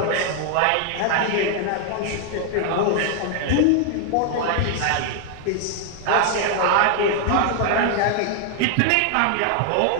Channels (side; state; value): both; different; correlation 0.00